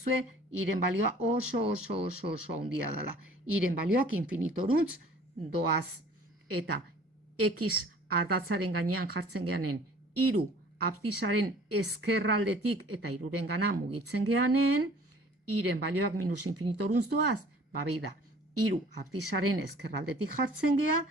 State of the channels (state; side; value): normal; both; correlation 0.51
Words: iren balioa oso haundia dela. Iren balioak infinitorantz doaz. Eta X ardatzaren gainean jartzen geanen, 3 abzizaren ezkerraldetik eta 3-ren gana mugitzen geanen, iren balioak minus infinitorantz doaz, beida, 3 abzizaren ezkerraldetik jartzen gea,